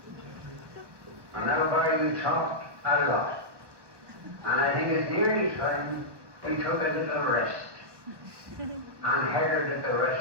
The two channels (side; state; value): left; late; 1.2 ms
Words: And now, Barry, you talk a lot. And I think it's nearly time we took a little rest and headed the